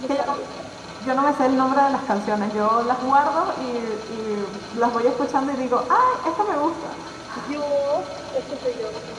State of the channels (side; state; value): both; identical; correlation 1.00